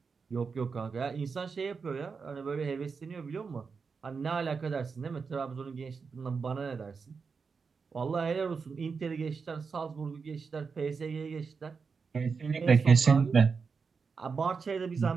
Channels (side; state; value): left; quieter; 5.2 dB